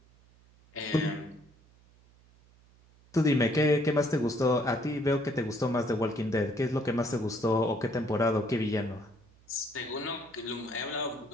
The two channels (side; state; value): right; noise; hum, 29 dB below the sound